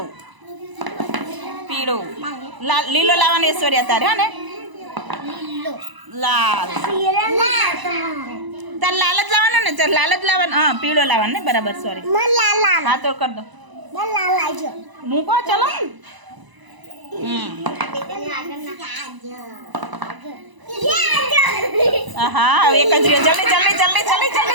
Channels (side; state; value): left; late; 1.0 ms